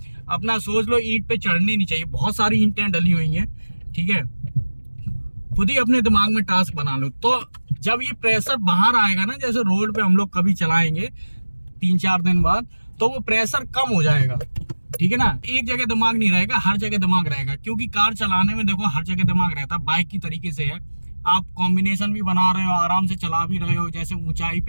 अपना सोच लो, ईंट पे चढ़नी नहीं चाहिए, बहुत सारी ईंटें डली हुई हैं। ठीक है, खुद ही अपने दिमाग में टास्क बना लो। तो जब ये प्रेशर बाहर आएगा ना, जैसे रोड पे हम लोग कभी चलाएंगे 3-4 दिन बाद, तो वो प्रेशर कम हो जाएगा। ठीक है ना, एक जगह दिमाग नहीं रहेगा, हर जगह दिमाग रहेगा। क्योंकि कार चलाने में देखो हर जगह दिमाग रहता है, बाइक की तरीके से है। आप कॉम्बिनेशन भी बना रहे हो, आराम से चला भी रहे हो, जैसे ऊंचाई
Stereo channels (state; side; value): inverted; both; correlation -1.00